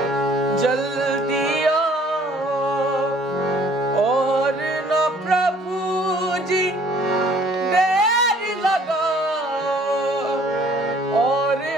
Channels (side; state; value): both; normal; correlation 0.57